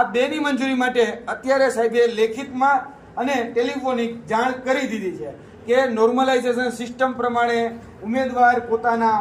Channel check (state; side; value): identical; both; correlation 1.00